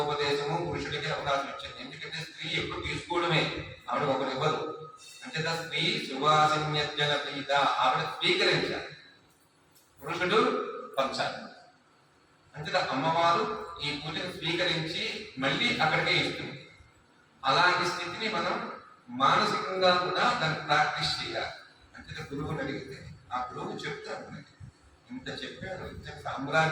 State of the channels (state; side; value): identical; both; correlation 1.00